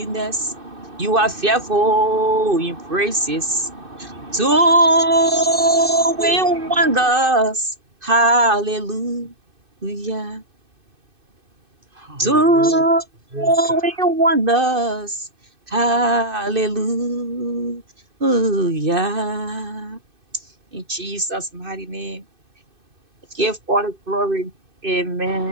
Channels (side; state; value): left; late; 2.6 ms